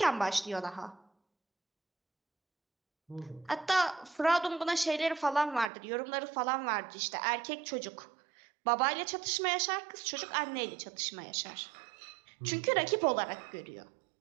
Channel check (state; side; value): drops out; left; at 5.7 s